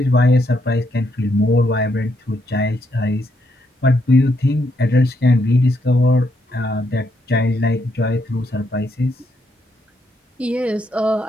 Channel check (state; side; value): normal; both; correlation 0.77